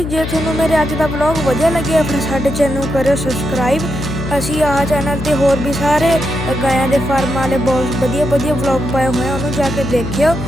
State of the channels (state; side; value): noise; left; hum, 6 dB below the sound